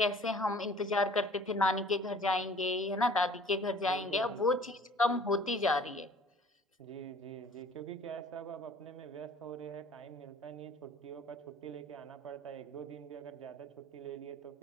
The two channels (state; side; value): normal; both; correlation 0.51